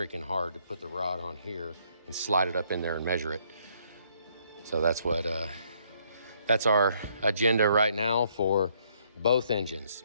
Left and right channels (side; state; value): both; inverted; correlation -0.68